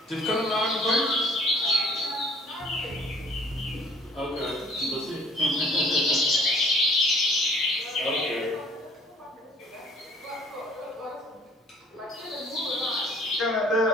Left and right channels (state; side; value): normal; both; correlation 0.56